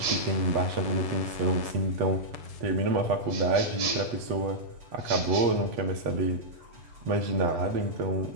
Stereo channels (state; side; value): late; left; 8.1 ms